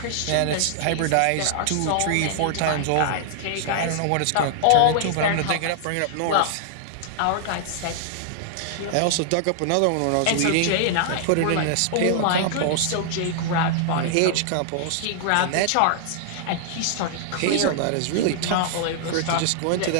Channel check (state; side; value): different; both; correlation -0.01